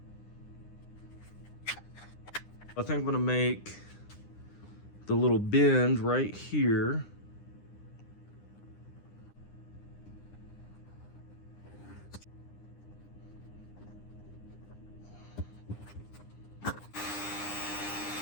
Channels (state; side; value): late; right; 9.8 ms